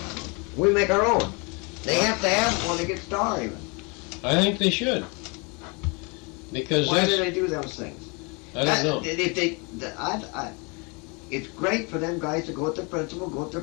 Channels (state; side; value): quieter; right; 31.2 dB